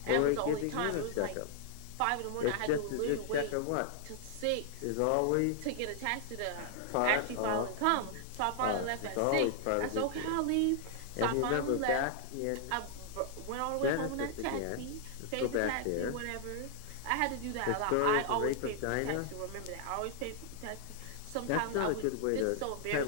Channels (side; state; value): both; different; correlation 0.00